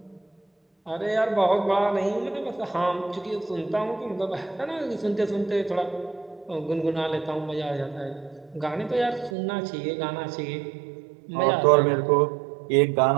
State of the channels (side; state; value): left; drops out; at 9.3 s